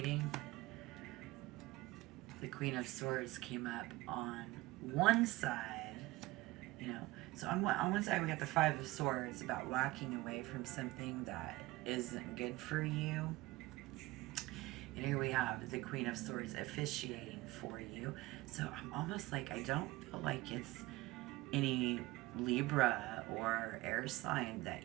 the Queen of Swords came up on one side, you know. So on one side we got the Five of Swords about walking away from something that isn't good for you. And here we have the Queen of Swords officiating for you. So I'm almost like, I don't feel like it's any Libra or air sign that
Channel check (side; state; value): left; quieter; 19.5 dB